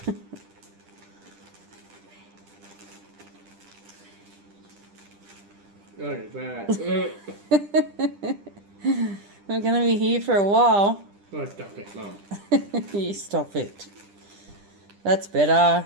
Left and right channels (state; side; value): late; left; 10 ms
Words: Oh, it's bad. We're going to be here for a while. Oh, stop it, Mum. You stop it. That's better.